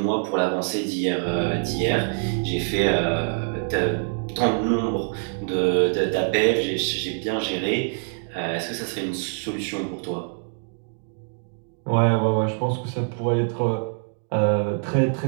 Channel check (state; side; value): silent; left; 59 dB below the other